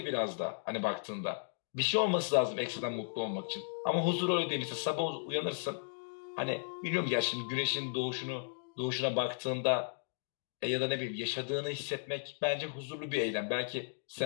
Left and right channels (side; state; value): right; silent; digital silence